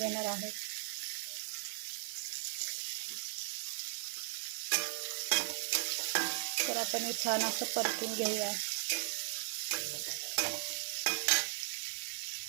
आहोत. तर आपण हे छान असं परतून घेऊया.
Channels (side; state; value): left; silent; 53 dB below the other